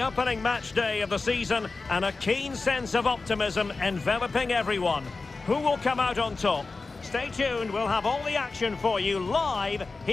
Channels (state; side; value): quieter; right; 3.8 dB